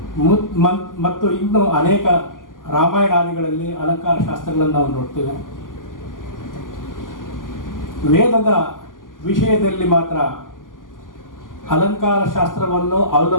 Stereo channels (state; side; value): late; right; 0.89 ms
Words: ಮತ್ತು ಇನ್ನು ಅನೇಕ ರಾಮಾಯಣಾದಿಗಳಲ್ಲಿ ಅಲಂಕಾರ ಶಾಸ್ತ್ರಗಳನ್ನು ನಾವು ನೋಡ್ತೇವೆ. ವೇದದ ವಿಷಯದಲ್ಲಿ ಮಾತ್ರ ಅಲಂಕಾರ ಶಾಸ್ತ್ರವನ್ನು